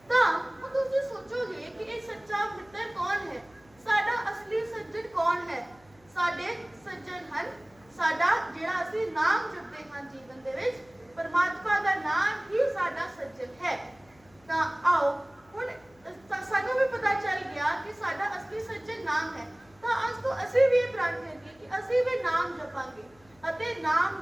ਤਾਂ ਹੁਣ ਤੁਸੀਂ ਸੋਚੋਗੇ ਕਿ ਇਹ ਸੱਚਾ ਮਿੱਤਰ ਕੌਣ ਹੈ, ਸਾਡਾ ਅਸਲੀ ਸੱਜਣ ਕੌਣ ਹੈ। ਸਾਡੇ ਸੱਜਣ ਹਨ ਸਾਡਾ ਜਿਹੜਾ ਅਸੀਂ ਨਾਮ ਜਪਦੇ ਹਾਂ ਜੀਵਨ ਦੇ ਵਿੱਚ, ਪਰਮਾਤਮਾ ਦਾ ਨਾਮ ਹੀ ਸਾਡਾ ਸੱਜਣ ਹੈ। ਤਾਂ ਆਓ ਹੁਣ ਸਾਨੂੰ ਵੀ ਪਤਾ ਚੱਲ ਗਿਆ ਕਿ ਸਾਡਾ ਅਸਲੀ ਸੱਜਣ ਨਾਮ ਹੈ। ਤਾਂ ਅੱਜ ਤੋਂ ਅਸੀਂ ਵੀ ਇਹ ਪ੍ਰਣ ਕਰੀਏ ਕਿ ਅਸੀਂ ਵੀ ਨਾਮ ਜਪਾਂਗੇ ਅਤੇ ਨਾਮ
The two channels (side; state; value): left; noise; hum, 29 dB below the sound